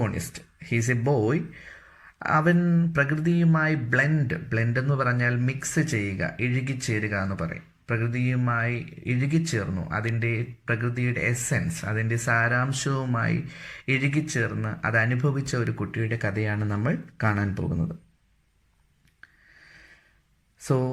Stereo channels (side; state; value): both; identical; correlation 1.00